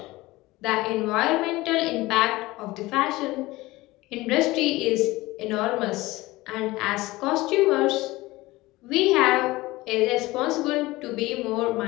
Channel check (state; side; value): quieter; right; 19.7 dB